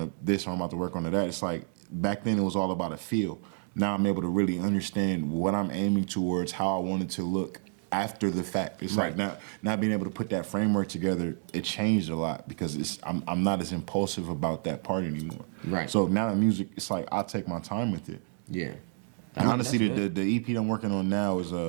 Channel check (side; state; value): left; silent; digital silence